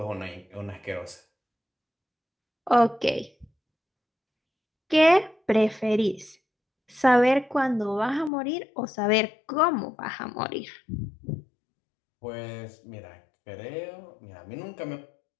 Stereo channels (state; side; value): drops out; right; at 8.3 s